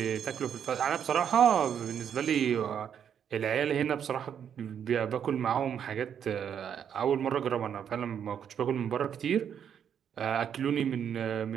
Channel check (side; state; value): left; quieter; 8.5 dB